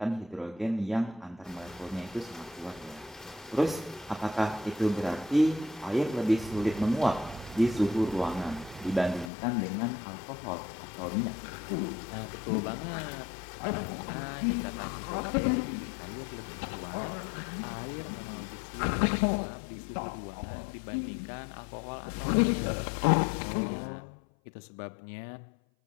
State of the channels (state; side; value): drops out; right; at 9.3 s